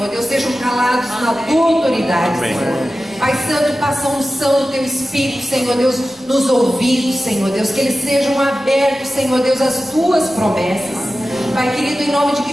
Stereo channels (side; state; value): both; normal; correlation 0.94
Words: Deus, sejam calados na tua autoridade, Senhor. Pai Santo, passa a unção do teu Espírito, Senhor Deus, nos ouvidos, Senhor Deus, que eles sejam abertos, Senhor Deus, às tuas promessas. Pai querido, em nome de